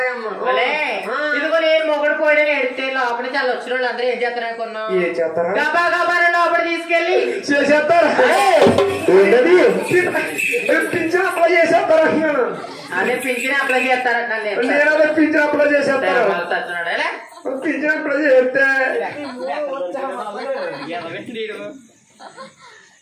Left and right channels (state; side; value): identical; both; correlation 1.00